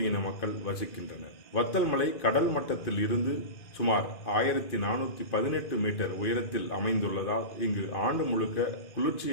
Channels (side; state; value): right; late; 2.0 ms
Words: மக்கள் வசிக்கின்றனர். வத்தல் மலை கடல் மட்டத்தில் இருந்து சுமார் 1418 மீட்டர் உயரத்தில் அமைந்துள்ளதால் இங்கு ஆண்டு முழுக்க